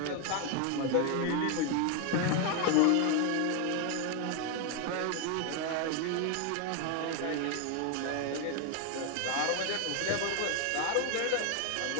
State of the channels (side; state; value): both; different; correlation 0.01